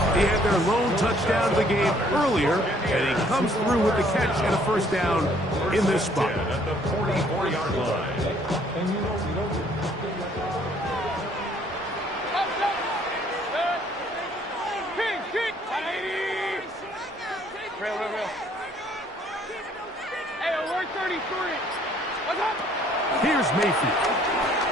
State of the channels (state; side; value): normal; both; correlation 0.62